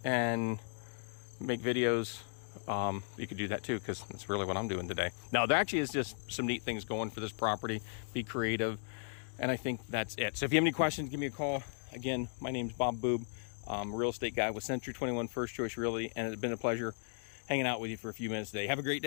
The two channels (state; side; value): silent; right; digital silence